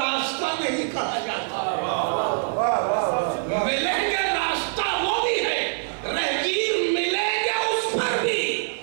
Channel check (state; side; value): silent; left; digital silence